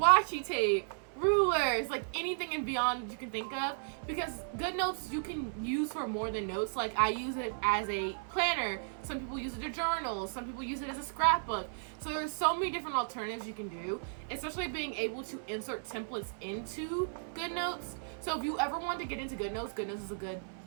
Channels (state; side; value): silent; left; 55 dB below the other